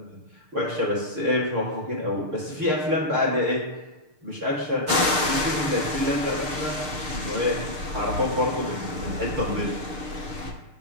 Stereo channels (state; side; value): late; left; 6.6 ms